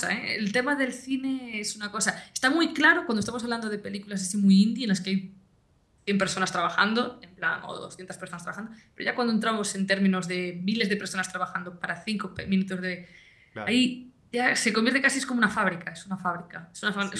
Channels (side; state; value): both; identical; correlation 1.00